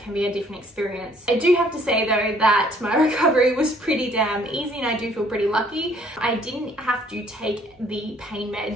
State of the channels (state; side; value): normal; both; correlation 0.61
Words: be a different experience. I do have to say though that my recovery was pretty damn easy, and I do feel pretty lucky. I didn't have to take the pain